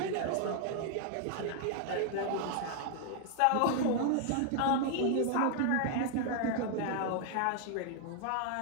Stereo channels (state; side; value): different; both; correlation 0.00